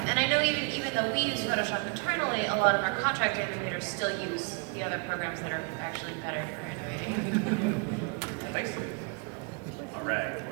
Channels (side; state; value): left; quieter; 31.7 dB